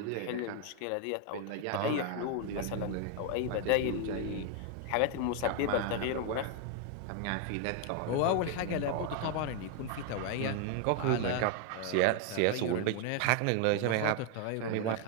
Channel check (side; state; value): both; different; correlation 0.00